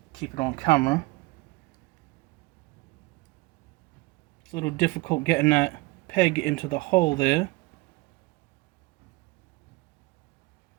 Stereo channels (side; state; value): left; quieter; 22.6 dB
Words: keep it on camera. It's a little difficult getting that peg into the hole there.